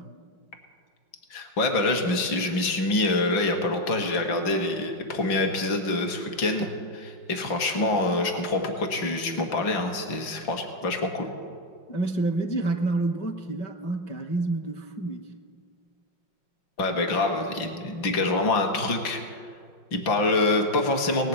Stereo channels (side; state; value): right; late; 5.9 ms